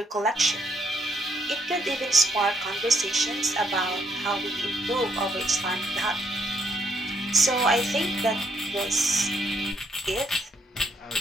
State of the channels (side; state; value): both; normal; correlation 0.73